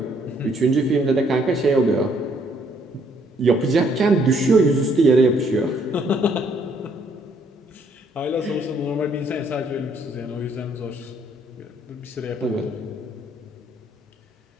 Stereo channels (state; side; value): normal; both; correlation 0.67